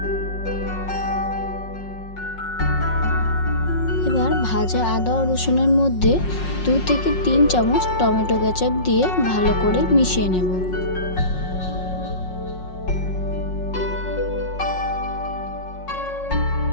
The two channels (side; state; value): right; late; 5.5 ms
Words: এবার ভাজা আদা ও রসুনের মধ্যে 2 থেকে 3 চামচ টমেটো কেচাপ দিয়ে ভালো করে মিশিয়ে নেব।